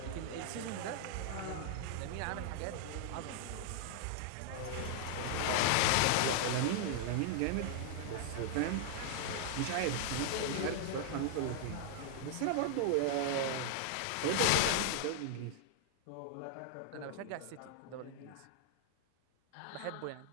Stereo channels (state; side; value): different; both; correlation -0.01